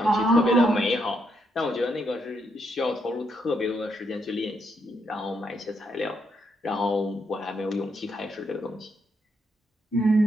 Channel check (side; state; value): both; normal; correlation 0.78